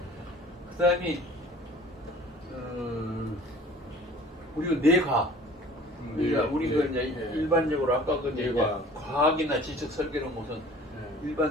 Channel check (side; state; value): both; normal; correlation 0.48